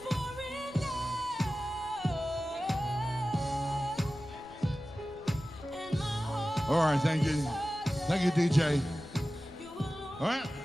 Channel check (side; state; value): left; noise; rumble, 22 dB below the sound